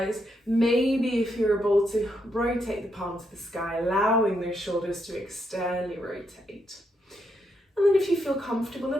Maybe if you're able to rotate the palm to the sky, allowing those shoulders to externally rotate. And then if you feel comfortable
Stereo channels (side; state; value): both; normal; correlation 0.79